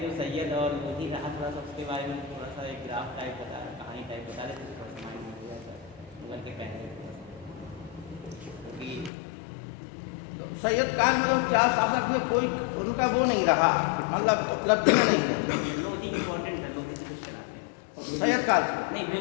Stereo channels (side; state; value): right; drops out; at 9.1 s